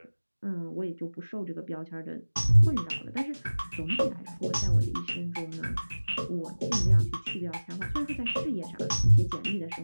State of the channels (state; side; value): inverted; both; correlation -1.00